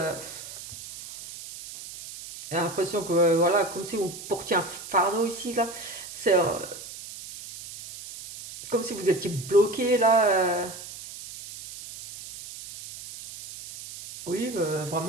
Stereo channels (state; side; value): noise; right; hiss, 13 dB below the sound